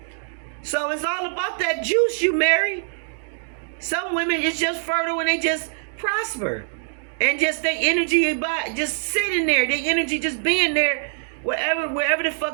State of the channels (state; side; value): silent; left; digital silence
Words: So it's all about that juice you marry. Some women, it's just fertile and they just prosper. And just their energy just sitting there. Their energy just being there. Wherever the